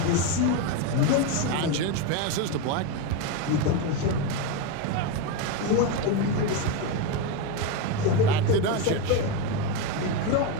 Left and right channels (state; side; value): different; both; correlation 0.04